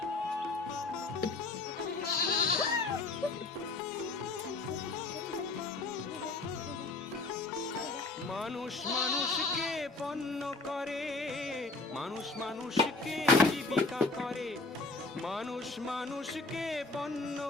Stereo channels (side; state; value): right; quieter; 3.5 dB